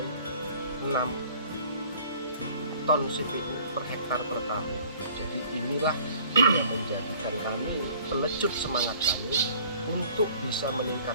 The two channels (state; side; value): inverted; both; correlation -0.52